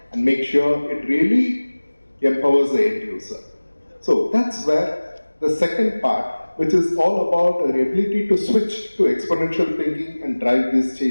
and make sure it really empowers the end user. So that's where the second part, which is all about our ability to switch to exponential thinking and drive these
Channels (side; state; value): both; inverted; correlation -1.00